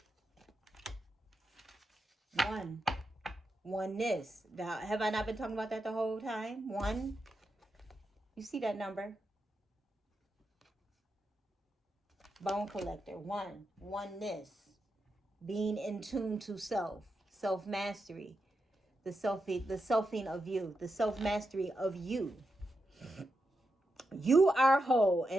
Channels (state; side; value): normal; both; correlation 0.86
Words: Oneness. Now, have I not been talking about that the whole time? One. You see that number? Bone collector. Oneness. Being in tune to self. Self-mastery. The selfing of you. The self-mastery of you. You are whole